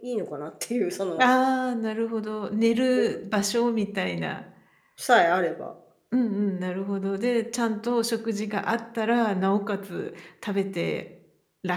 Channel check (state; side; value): identical; both; correlation 1.00